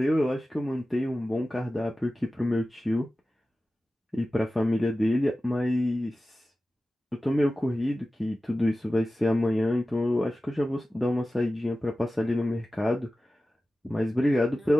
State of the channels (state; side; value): normal; both; correlation 0.95